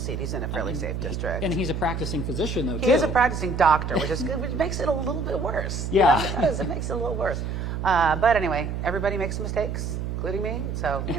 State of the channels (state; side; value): noise; right; hum, 3 dB below the sound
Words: He's in a fairly safe district. And he's a practicing physician, though, too. He is a practicing doctor, which makes it a little bit worse. Yeah. It does. It makes it a little worse. But anyway, everybody makes mistakes, including me. So,